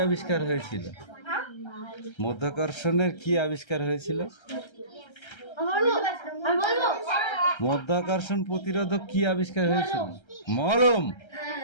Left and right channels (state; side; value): late; right; 1.3 ms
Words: আবিষ্কার হয়েছিল? মধ্যাকর্ষণের কি আবিষ্কার হয়েছিল? মধ্যাকর্ষণ প্রতিরোধক কি আবিষ্কার হয়েছিল? মলম।